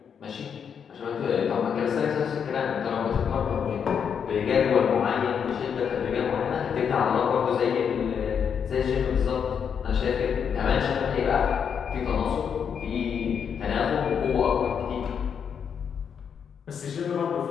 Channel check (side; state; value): right; quieter; 7.3 dB